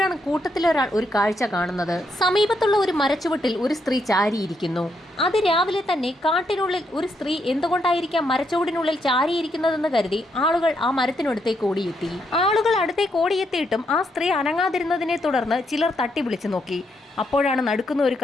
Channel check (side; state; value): both; normal; correlation 0.78